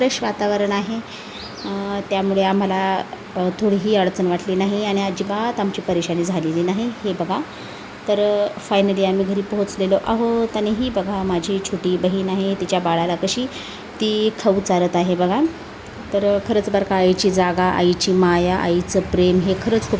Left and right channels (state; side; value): identical; both; correlation 1.00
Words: वातावरण आहे. त्यामुळे आम्हाला थोडीही अडचण वाटली नाही आणि अजिबात आमची परेशानी झालेली नाही. हे बघा, तर फायनली आम्ही घरी पोहोचलेलो आहोत. आणि ही बघा माझी छोटी बहीण आहे, तिच्या बाळाला कशी ती खाऊ चारत आहे बघा. तर खरंच बरं का, आईची जागा, आईची माया, आईचं प्रेम हे खरंच खूप